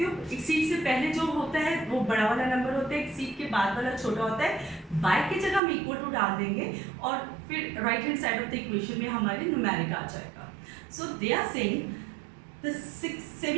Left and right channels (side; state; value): left; drops out; at 5.6 s